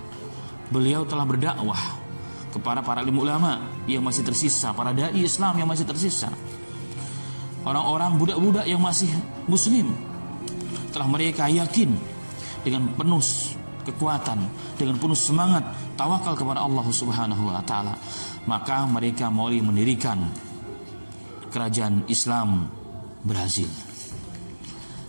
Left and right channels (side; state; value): both; inverted; correlation -1.00